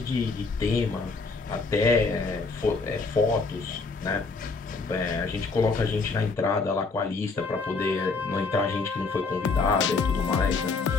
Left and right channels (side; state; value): right; quieter; 4.2 dB